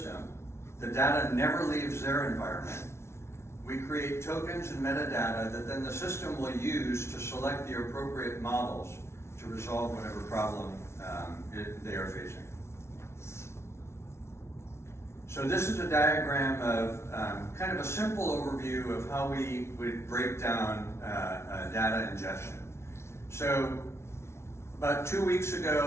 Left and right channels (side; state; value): right; late; 0.13 ms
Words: The data never leaves their environment. We create tokens and metadata that then the system will use to select the appropriate models to resolve whatever problem they are facing. So this is a diagram of kind of a simple overview of how we would break down data ingestion. So about 2 weeks